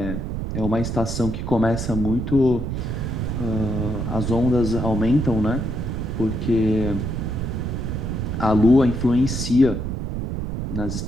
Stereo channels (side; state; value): right; noise; rumble, 4 dB below the sound